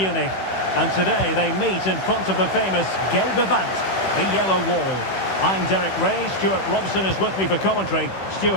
And today they meet in front of the famous Gelbe Wand, the yellow wall. I'm Derek Ray, Stuart Robson is with me for commentary.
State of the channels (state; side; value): late; right; 16 ms